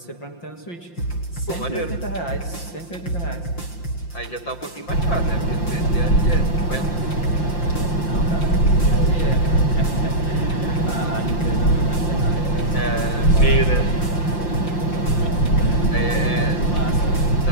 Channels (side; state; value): right; late; 5.8 ms